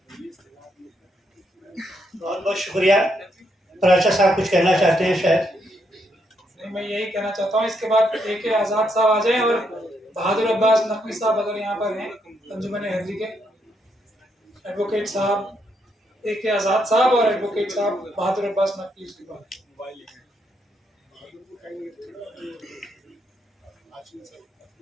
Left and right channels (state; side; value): normal; both; correlation 0.77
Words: बहुत बहुत शुक्रिया। प्राचा साहब कुछ कहना चाहते हैं शायद। नहीं, मैं यही कहना चाहता हूँ, इसके बाद AK आज़ाद साहब आ जाएं और बहादुर अब्बास नकवी साहब अगर यहाँ पर हैं, अंजुमन हैदरी के एडवोकेट साहब AK आज़ाद साहब और एडवोकेट साहब बहादुर अब्बास नकवी उसके बाद।